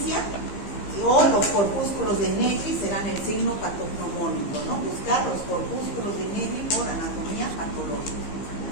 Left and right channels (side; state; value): right; late; 15 ms